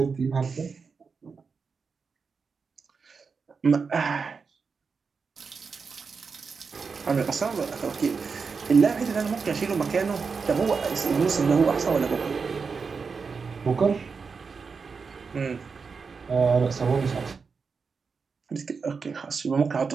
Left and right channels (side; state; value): left; quieter; 5.2 dB